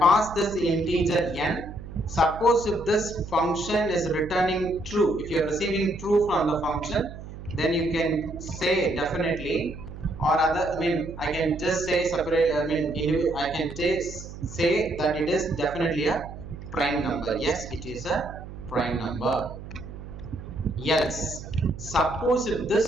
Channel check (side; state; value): right; noise; hum, 12 dB below the sound